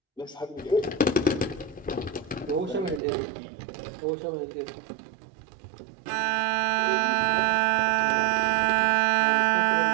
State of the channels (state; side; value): drops out; left; at 3.0 s